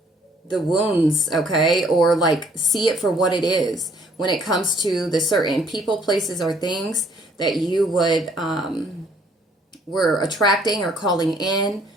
wounds. Okay. Or like see it for what it is when it comes to the certain people, places, or things that you would, were attracting or calling in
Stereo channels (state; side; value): normal; both; correlation 0.62